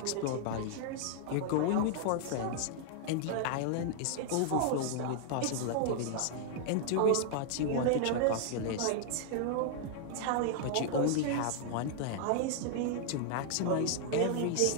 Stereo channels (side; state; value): both; different; correlation 0.00